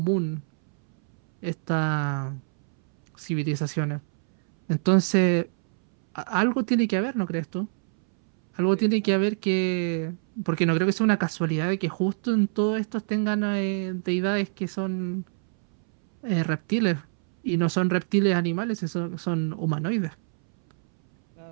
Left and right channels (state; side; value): silent; left; 62 dB below the other